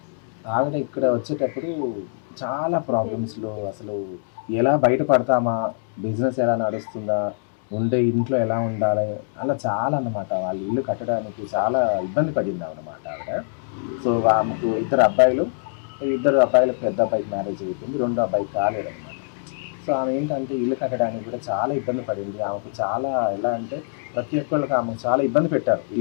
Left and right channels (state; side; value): silent; right; digital silence